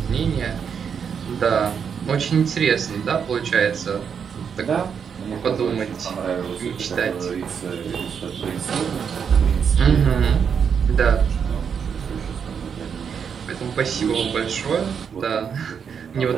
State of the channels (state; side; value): quieter; left; 7.0 dB